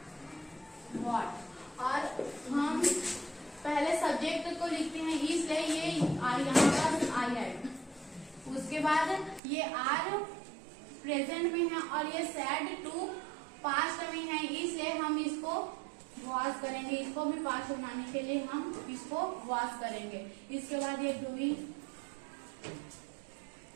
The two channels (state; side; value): drops out; left; at 9.4 s